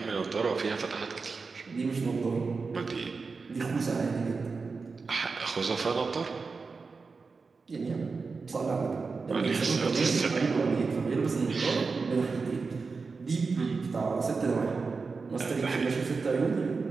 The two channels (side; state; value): left; quieter; 4.5 dB